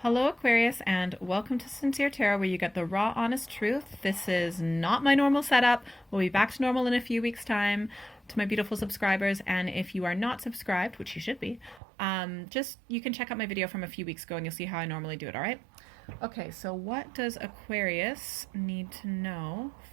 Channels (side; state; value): left; drops out; at 11.8 s